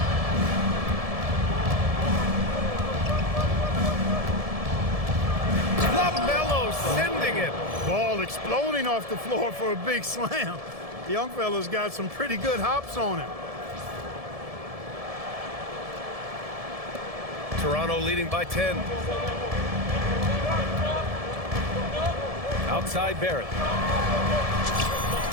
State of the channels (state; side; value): late; left; 1.7 ms